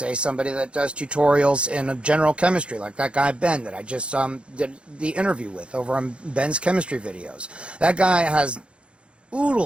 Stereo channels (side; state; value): left; late; 0.058 ms